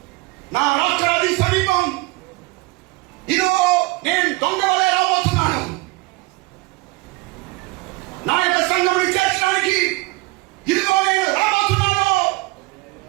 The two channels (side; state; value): left; quieter; 23.3 dB